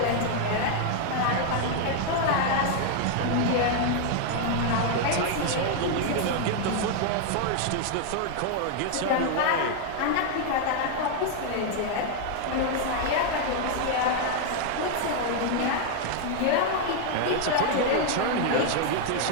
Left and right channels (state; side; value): different; both; correlation 0.00